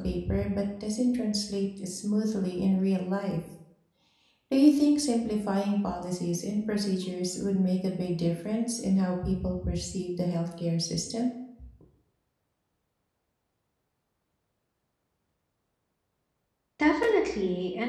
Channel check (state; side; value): identical; both; correlation 1.00